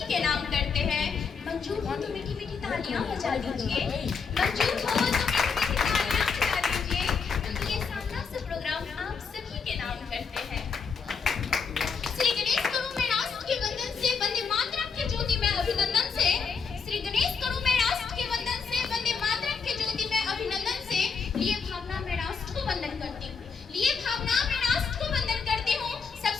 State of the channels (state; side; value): quieter; right; 5.6 dB